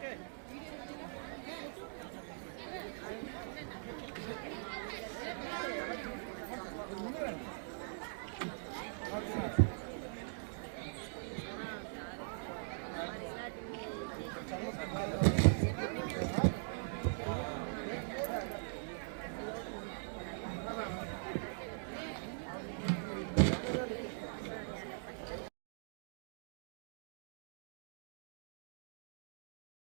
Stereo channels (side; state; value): left; silent; digital silence